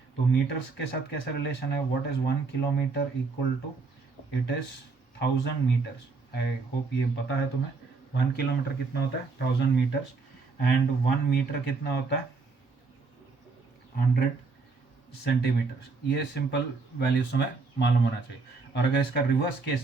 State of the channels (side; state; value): left; quieter; 4.3 dB